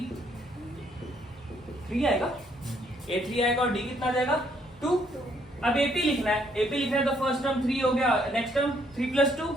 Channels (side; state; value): both; normal; correlation 0.69